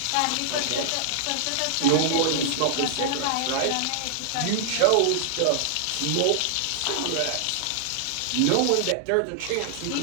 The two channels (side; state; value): both; different; correlation -0.01